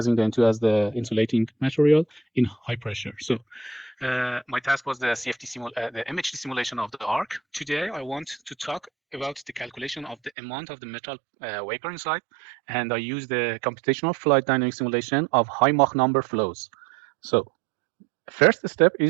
the N2 as the insulating material in high pressure. So my task was the the MHD simulation of the arc. Today, I want to talk about the calculation of the amount of the metal vapor inside, and I use the computational fluid dynamic simulation of high Mach number flows. So first step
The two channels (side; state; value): left; drops out; at 10.3 s